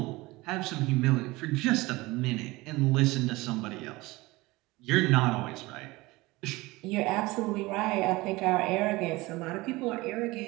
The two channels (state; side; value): quieter; left; 21.3 dB